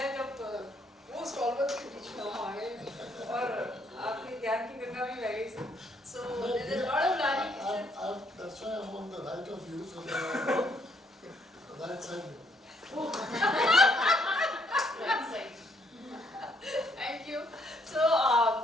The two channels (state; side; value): normal; both; correlation 0.69